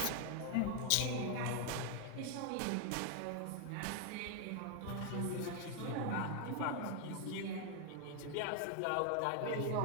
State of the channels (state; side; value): different; both; correlation 0.00